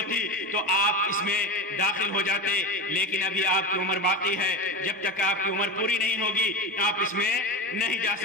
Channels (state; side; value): normal; both; correlation 0.23